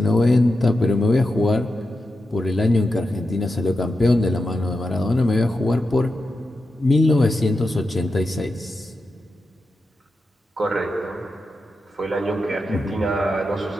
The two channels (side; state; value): both; normal; correlation 0.89